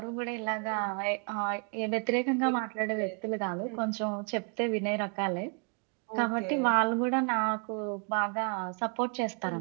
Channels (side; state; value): left; quieter; 37.3 dB